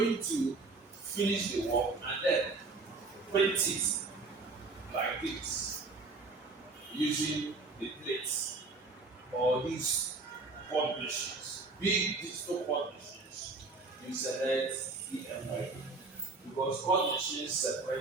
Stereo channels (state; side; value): quieter; left; 3.7 dB